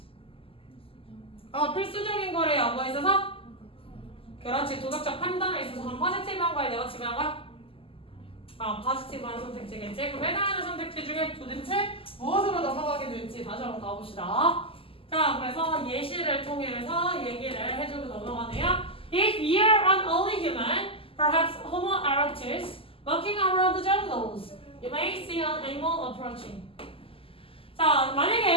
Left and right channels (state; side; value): late; right; 0.26 ms